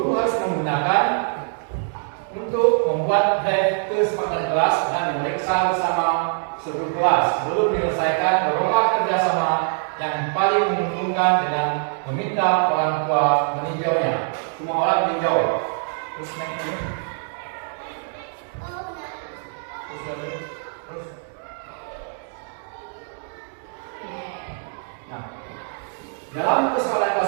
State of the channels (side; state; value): left; silent; 59 dB below the other